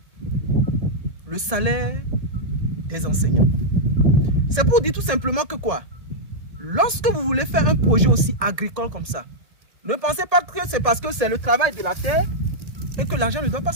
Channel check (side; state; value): left; late; 1.8 ms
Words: le salaire des enseignants. C'est pour dire tout simplement que quoi? Lorsque vous voulez faire un projet aussi agricole comme ça, ne pensez pas que c'est parce que c'est le travail de la terre et que l'argent ne doit pas